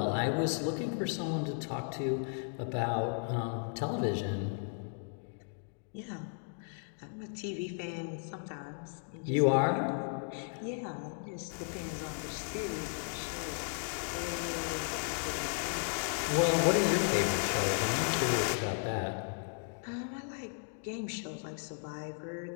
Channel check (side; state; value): right; silent; 54 dB below the other